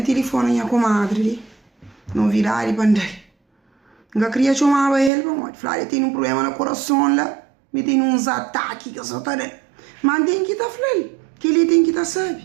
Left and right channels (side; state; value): left; drops out; at 5.1 s